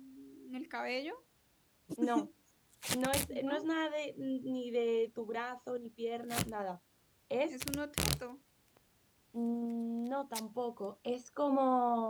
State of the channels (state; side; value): identical; both; correlation 1.00